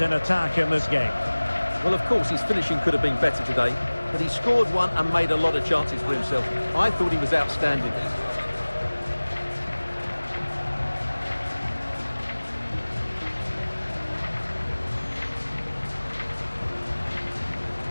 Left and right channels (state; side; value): inverted; both; correlation -1.00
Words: in attack in this game. Well, of course, his finishing could have been better today, but he scored one and made a lot of chances for himself. I thought he was outstanding.